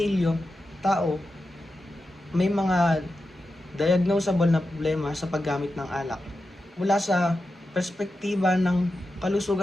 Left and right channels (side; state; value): both; normal; correlation 0.90